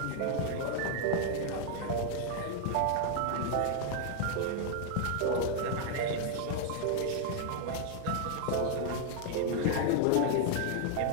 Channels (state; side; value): different; both; correlation 0.00